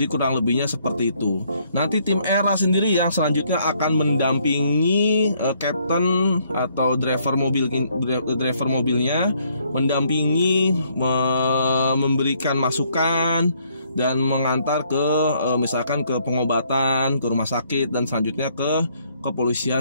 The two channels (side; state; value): both; inverted; correlation -0.68